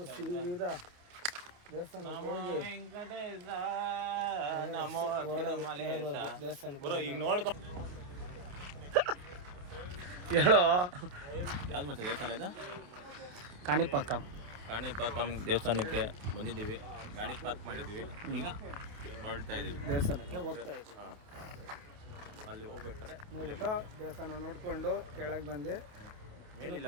ಸೀದಾ ದೇವಸ್ಥಾನಕ್ಕೆ ಹೋಗಿ ದೇವಸ್ಥಾನಕ್ಕೆ ಈಗ ನೋಡ್ಕೊ. ಹೇಳೋ ಯಾವ್ದು ಮತ್ತೆ ದೇವಸ್ಥಾನ ಇದು? ಕಾಣಿಪಾಕಂ ದೇವಸ್ಥಾನಕ್ಕೆ ಬಂದಿದ್ದೀವಿ, ಗಾಡಿ ಪಾರ್ಕ್ ಮಾಡಿದ್ದೀವಿ, ಈಗ ಹೊರಡ್ತಾ ಇದ್ದೀವಿ ದೇವಸ್ಥಾನಕ್ಕೆ ಹೋಗ್ತಾ ಇದ್ದೀವಿ. ಅಲ್ಲಿ ಹೋಗ್ಬೇಕಾದ್ರೆ ಹೋಗ್ಬಿಟ್ಟು ದೇವಸ್ಥಾನ ನೋಡ್ಕೊಂಡು ಕೆಳಗೆ ಬಂದು ಮೇಲಿಲ್ಲ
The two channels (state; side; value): late; left; 28 ms